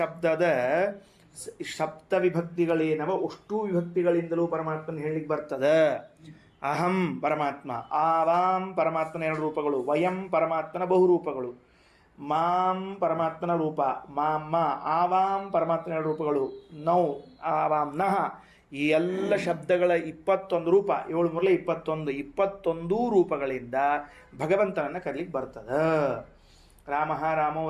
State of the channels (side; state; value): both; identical; correlation 1.00